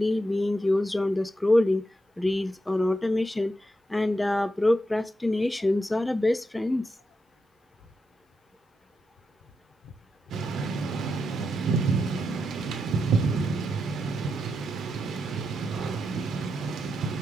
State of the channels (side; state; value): both; normal; correlation 0.85